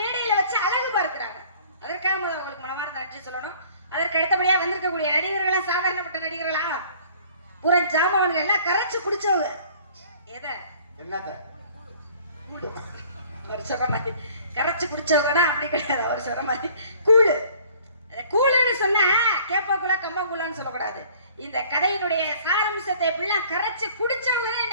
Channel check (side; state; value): both; inverted; correlation -0.53